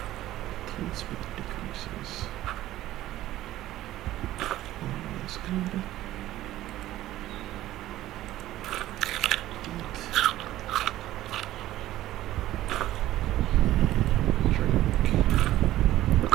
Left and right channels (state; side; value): quieter; left; 14.6 dB